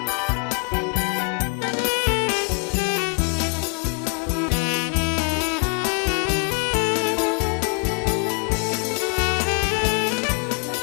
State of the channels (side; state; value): right; quieter; 35.5 dB